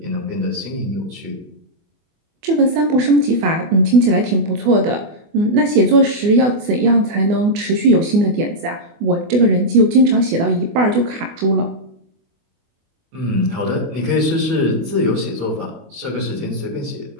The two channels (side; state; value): left; late; 24 ms